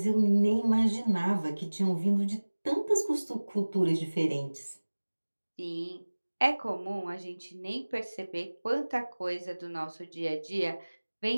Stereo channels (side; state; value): both; inverted; correlation -1.00